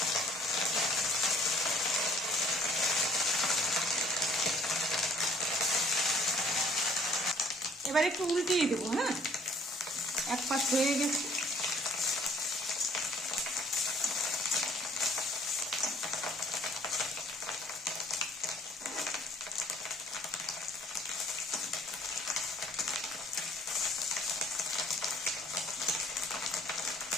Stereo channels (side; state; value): both; normal; correlation 0.58